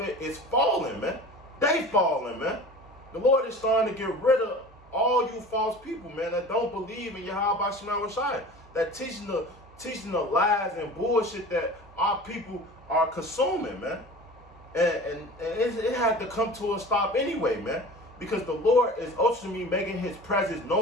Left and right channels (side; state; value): both; normal; correlation 0.39